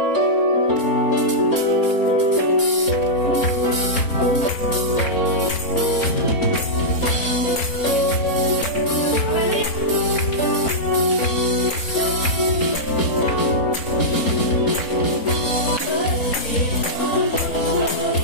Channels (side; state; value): right; late; 3.7 ms